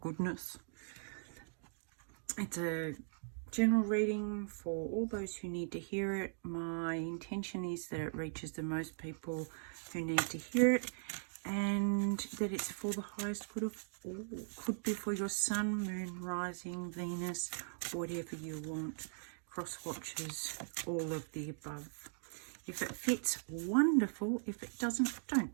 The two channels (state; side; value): silent; left; digital silence